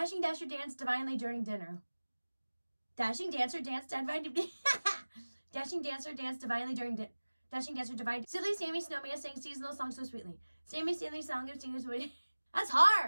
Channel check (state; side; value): inverted; both; correlation -1.00